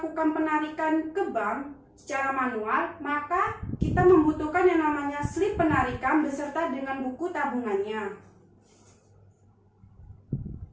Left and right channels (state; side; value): identical; both; correlation 1.00